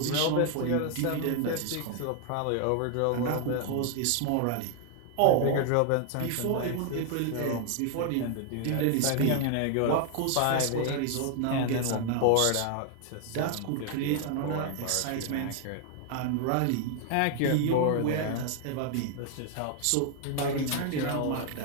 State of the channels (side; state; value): both; different; correlation 0.00